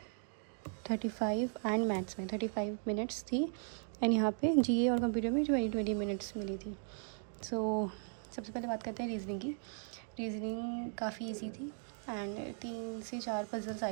एंड मैथ्स में 35 मिनट्स थी एंड यहाँ पे जीए और कंप्यूटर में 20 मिनट्स मिली थी। सो सबसे पहले बात करते हैं रीजनिंग की। रीजनिंग काफ़ी इजी थी एंड 3 से 4 पजल्स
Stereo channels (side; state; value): left; silent; 53 dB below the other